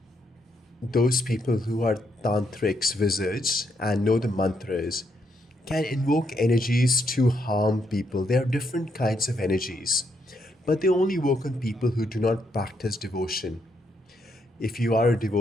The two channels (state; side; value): normal; both; correlation 0.77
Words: Those people who are tantrics, wizards, and know the mantras can invoke energies to harm people. There are different kinds of energies, but they only work on people who do not practice devotion. If you are a